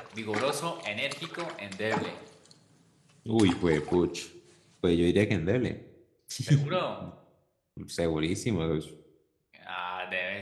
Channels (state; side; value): identical; both; correlation 1.00